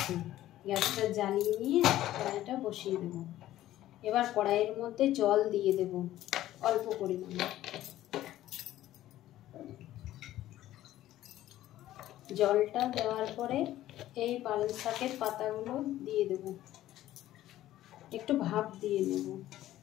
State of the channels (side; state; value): right; quieter; 14.0 dB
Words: গ্যাসটা জ্বালিয়ে নিয়ে কড়াইটা বসিয়ে দেবো। এবার কড়াইয়ের মধ্যে জল দিয়ে দেব অল্প পরিমাণে। জলটা দেওয়ার পরে এই পালং শাকের পাতাগুলো দিয়ে দেব, একটু ভাপ দিয়ে নেব।